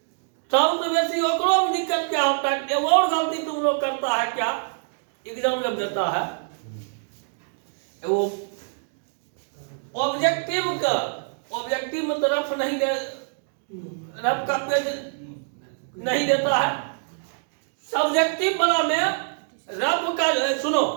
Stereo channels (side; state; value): left; silent; digital silence